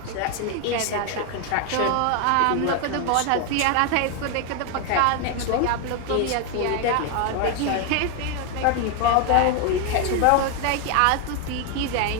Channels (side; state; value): both; different; correlation 0.01